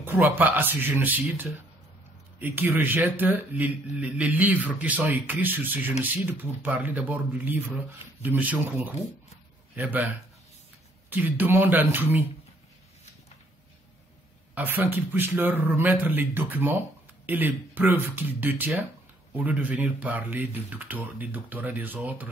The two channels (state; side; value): normal; both; correlation 0.66